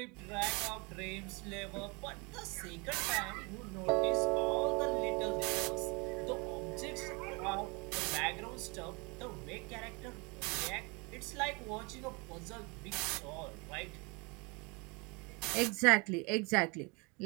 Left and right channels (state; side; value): quieter; left; 29.3 dB